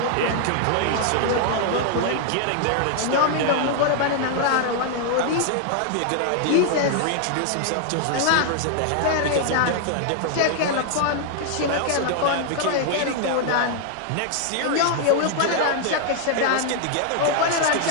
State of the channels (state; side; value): different; both; correlation 0.00